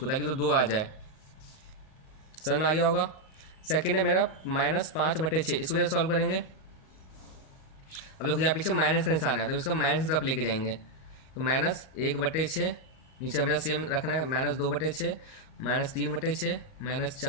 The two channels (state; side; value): late; right; 38 ms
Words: ताकि तो 2 आ जाए। समझ में आ गया होगा। सेकेंड है मेरा -5/6, इसको कैसे सॉल्व करेंगे। अब देखो यहाँ पीछे माइनस का निशान है, तो इसको माइनस की तरफ लेके जाएंगे। तो -1/6, नीचे हमेशा सेम रखना है, -2/6, -3/6,